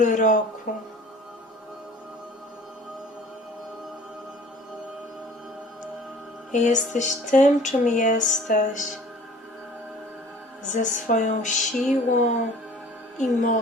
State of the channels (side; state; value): both; normal; correlation 0.48